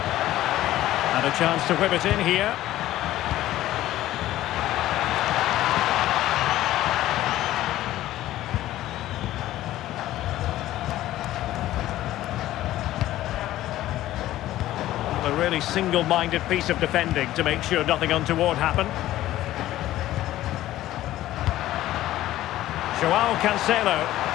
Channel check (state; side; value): quieter; right; 14.6 dB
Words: And a chance to whip it in here. They're really single-minded piece of defending to make sure nothing untoward happened. Joao Cancelo